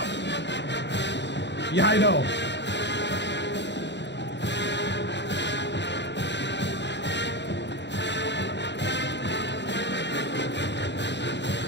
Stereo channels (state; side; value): late; right; 0.51 ms